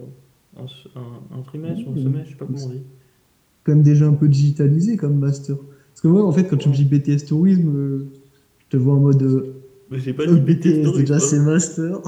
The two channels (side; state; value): both; identical; correlation 1.00